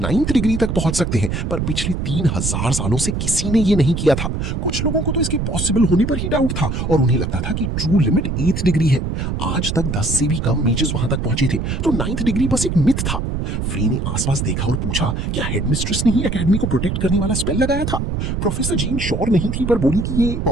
डिग्री तक पहुंच सकते हैं, पर पिछले 3000 सालों से किसी ने ये नहीं किया था। कुछ लोगों को तो इसके पॉसिबल होने पर ही डाउट था और उन्हें लगता था कि ट्रू लिमिट 8th डिग्री है। आज तक 10 से भी कम मेजेस वहां तक पहुंचे थे, तो 9th डिग्री बस एक मिथ था। फ्री ने आसपास देखा और पूछा, क्या हेडमिस्ट्रेस ने ही एकेडमी को प्रोटेक्ट करने वाला स्पेल लगाया था? प्रोफेसर जीन श्योर नहीं थी, पर बोली कि ये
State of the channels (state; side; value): noise; right; rumble, 2 dB below the sound